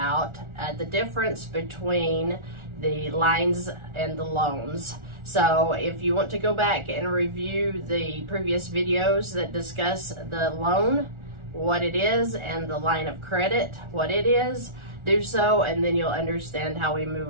the difference between the lines and the loans. So if you want to go back and review the previous videos that discuss the loan, what it is, and the line of credit, what it is, do so, and then you'll understand how we move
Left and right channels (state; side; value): late; left; 1.4 ms